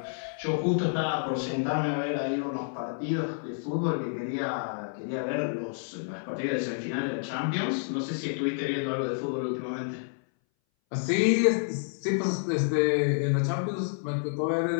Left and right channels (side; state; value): right; silent; 59 dB below the other